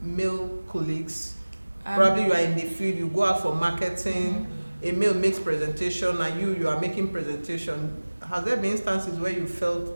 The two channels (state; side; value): inverted; both; correlation -1.00